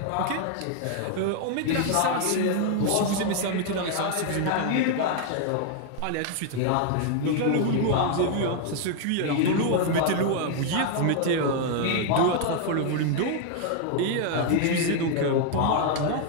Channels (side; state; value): both; different; correlation 0.00